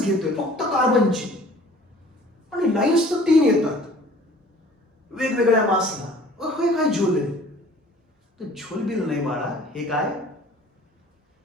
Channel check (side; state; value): both; normal; correlation 0.50